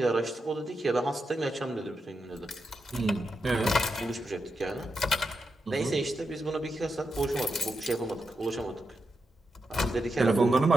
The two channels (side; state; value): both; normal; correlation 0.86